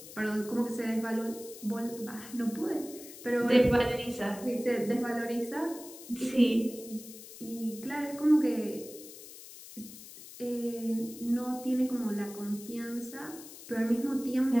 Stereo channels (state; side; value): noise; left; hiss, 15 dB below the sound